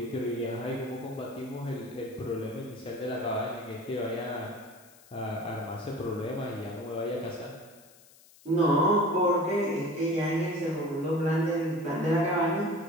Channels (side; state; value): left; noise; hiss, 25 dB below the sound